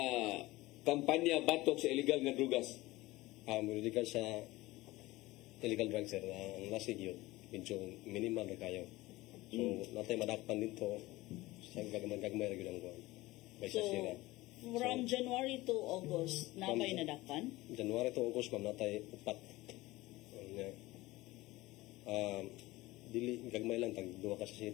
kampanya batok sa illegal nga drugas? Muridikan sa illegal drugs sir, ang lasig yun, medyo minimal na kayo. So, natay madakpan dito, sa gagmay ra gyud ang buwan. May So, sasira. from January to August, napay nadakpan? January to August, ma'am, natay upat. Dili, gagmay lang, tag duwa ka sa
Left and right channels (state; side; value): quieter; right; 19.3 dB